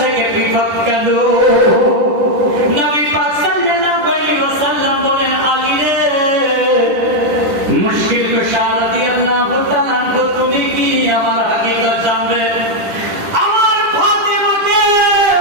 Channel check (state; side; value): late; left; 10 ms